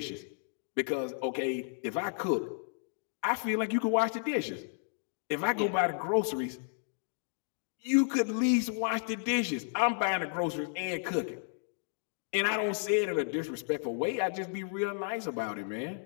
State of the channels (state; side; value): silent; right; digital silence